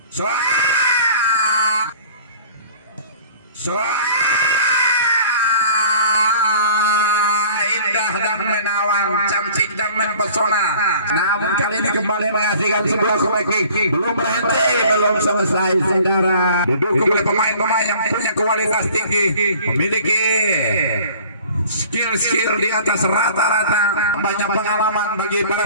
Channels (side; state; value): both; inverted; correlation -0.48